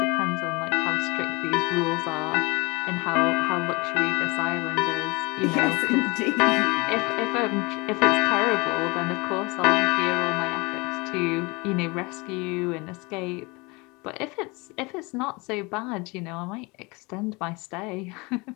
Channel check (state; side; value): quieter; right; 26.3 dB